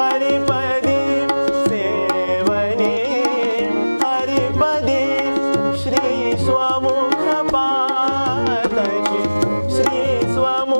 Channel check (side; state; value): both; inverted; correlation -1.00